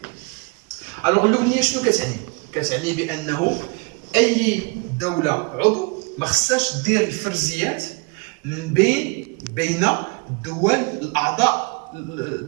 الوغ الاوليه شنو كتعني؟ كتعني بانه اي دوله عضو ما خصهاش دير الفرزيات من بين الدول الاعضاء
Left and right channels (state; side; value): quieter; left; 31.5 dB